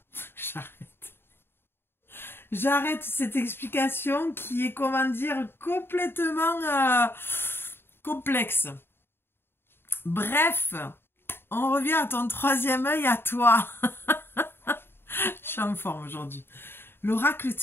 J'arrête cette explication qui est, comment dire, complètement complexe. Bref, on revient à ton troisième œil, à toi. Je suis en forme aujourd'hui. L'oracle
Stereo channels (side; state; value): right; late; 0.11 ms